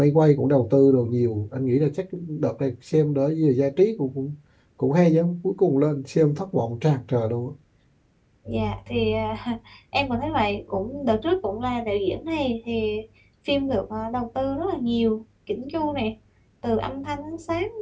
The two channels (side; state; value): both; identical; correlation 1.00